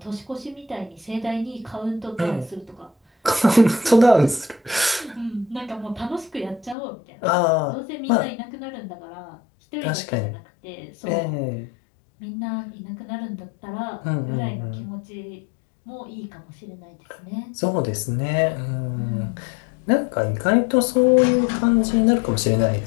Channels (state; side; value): drops out; right; at 6.8 s